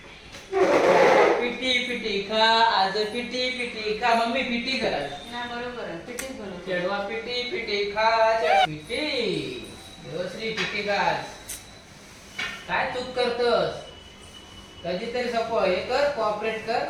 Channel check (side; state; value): both; identical; correlation 1.00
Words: पिटी पिटी खा आज पिटी पिटी खा. मम्मी पिटी करा. ना बरोबर आहे पिठीच बनवते. चढवा पिटी पिटी खा. पिटी देवश्री पिटी खा. काय चूक करतोस? कधीतरी सपो हे कर, कॉपरेट कर.